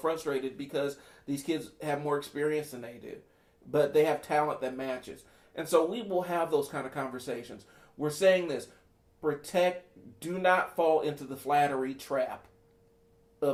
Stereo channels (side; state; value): both; identical; correlation 1.00